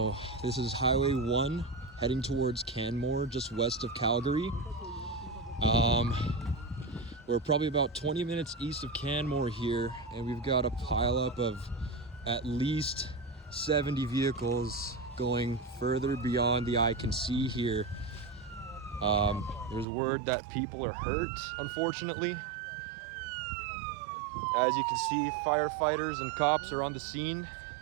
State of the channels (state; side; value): drops out; left; at 19.9 s